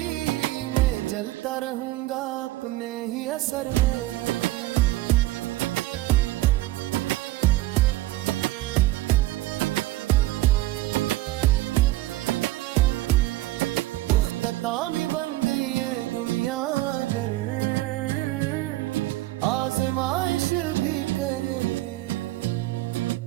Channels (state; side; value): quieter; left; 17.1 dB